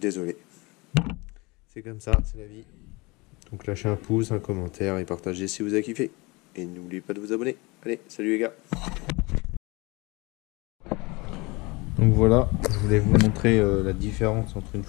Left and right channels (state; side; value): quieter; right; 25.1 dB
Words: C'est comme ça, c'est la vie. Donc lâchez un pouce, un commentaire et partagez si vous avez kiffé. Et n'oubliez pas de vous abonner. Allez, salut les gars. Donc voilà, je voulais vous montrer la différence entre une